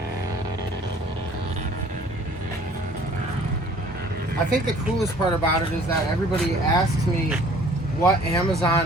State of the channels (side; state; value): both; normal; correlation 0.53